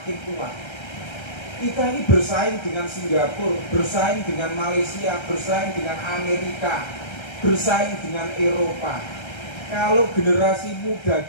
kuat. Kita ini bersaing dengan Singapura, bersaing dengan Malaysia, bersaing dengan Amerika, bersaing dengan Eropa. Kalau generasi muda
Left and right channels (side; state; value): right; late; 1.3 ms